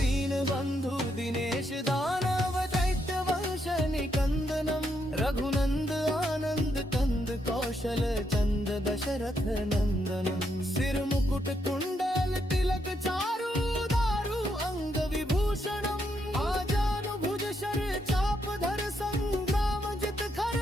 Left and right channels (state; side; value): normal; both; correlation 0.78